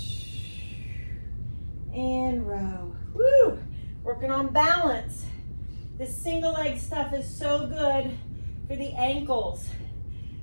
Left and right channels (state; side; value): inverted; both; correlation -1.00